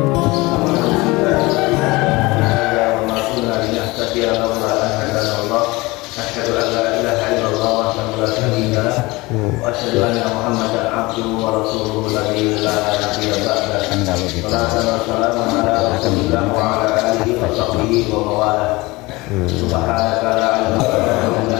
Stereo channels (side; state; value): right; quieter; 22.4 dB